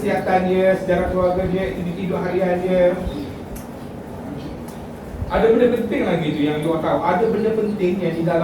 dia, sejarah keluarga dia, aktiviti hidup harian dia. Ada benda penting lagi tu yang you tahu. Ada benda penting yang di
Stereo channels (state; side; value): identical; both; correlation 1.00